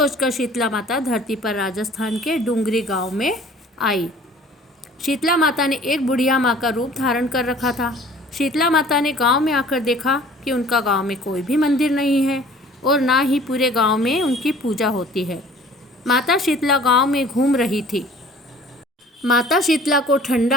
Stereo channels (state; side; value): normal; both; correlation 0.50